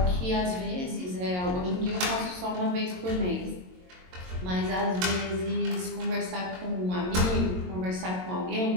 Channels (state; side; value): late; left; 22 ms